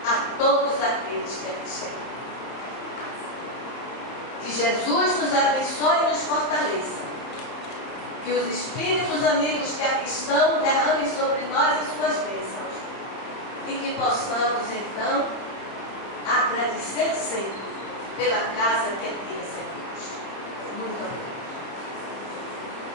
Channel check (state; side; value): late; right; 30 ms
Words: a todos aqueles que aqui chegam. Que Jesus nos abençoe e nos fortaleça. Que os espíritos amigos que aqui estão derramem sobre nós as suas bênçãos. E que possamos, então, agradecer sempre pela casa que aqui recebemos. Muito obrigada.